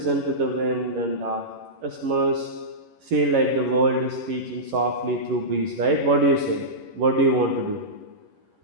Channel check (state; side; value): late; left; 11 ms